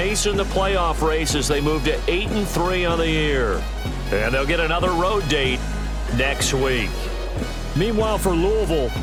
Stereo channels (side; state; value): both; identical; correlation 1.00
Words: in the playoff race as they move to 8-3 on the year. And they'll get another road date next week. Meanwhile, for Louisville,